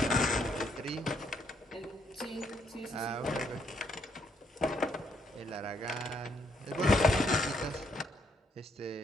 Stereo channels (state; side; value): normal; both; correlation 0.72